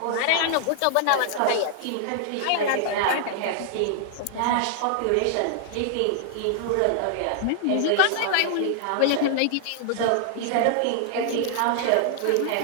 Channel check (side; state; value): both; different; correlation 0.00